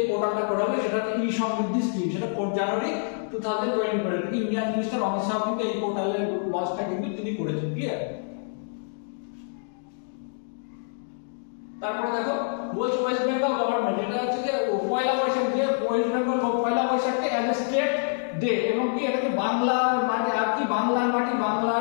পোর্টালটা করা হবে। সেটা হচ্ছে ই সমৃদ্ধি স্কিম, সেটা 4 জানুয়ারি 2024 ইন্ডিয়ান মিনিস্টার অমিত শাহ কিন্তু এই পোর্টালের লঞ্চটা কিন্তু তিনি করেছেন, ক্লিয়ার। তারপরে দেখো বলছে ওয়েস্ট বেঙ্গল গভর্নমেন্ট, এটা হচ্ছে যে পয়লা বৈশাখ, যে ওয়েস্ট বেঙ্গল পয়লা বৈশাখকে অ্যাজ এ স্টেট ডে, এবং কি এটাকে বাংলার মাটি আর কি বাংলার মাটি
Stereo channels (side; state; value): right; silent; digital silence